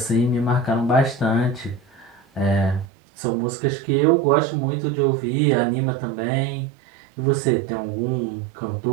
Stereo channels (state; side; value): drops out; left; at 2.9 s